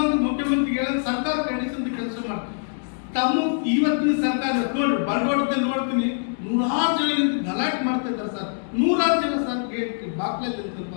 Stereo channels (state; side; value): silent; right; digital silence